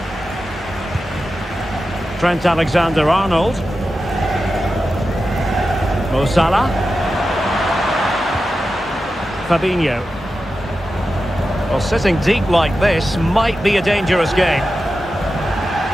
Trent Alexander-Arnold. Mo Salah. Fabinho. Well, sitting deep like this might be a dangerous game.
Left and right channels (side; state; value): both; normal; correlation 0.91